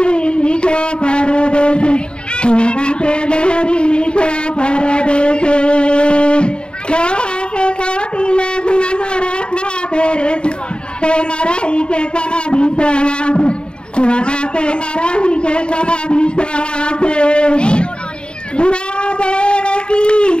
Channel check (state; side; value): late; right; 0.051 ms